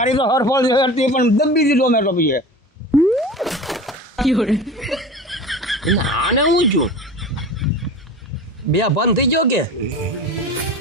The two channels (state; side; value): normal; both; correlation 0.34